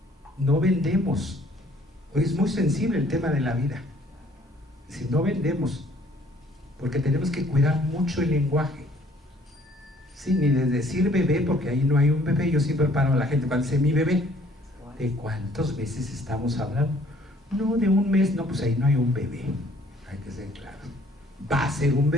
No vendemos. Hoy es muy sensible el tema de la vida. Si no vendemos, porque tenemos que cuidar mucho el lenguaje. Sí, ni de decir bebé, porque ahí no hay un bebé. Yo siempre paro a la gente cuando dice mi bebé. ¿De cuántos meses estamos hablando? No, de un mes. No, pues ahí no hay un bebé. Hay que ser claro. Va a ser un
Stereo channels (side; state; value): both; normal; correlation 0.59